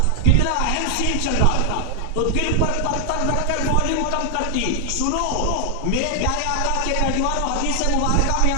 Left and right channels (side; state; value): both; different; correlation 0.00